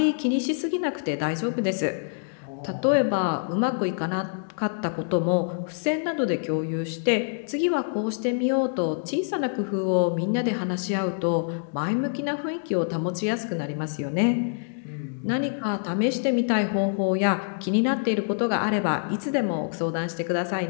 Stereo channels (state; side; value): silent; right; digital silence